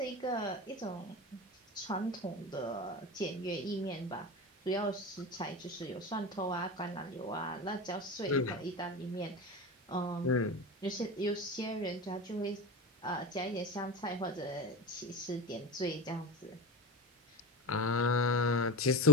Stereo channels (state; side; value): normal; both; correlation 0.25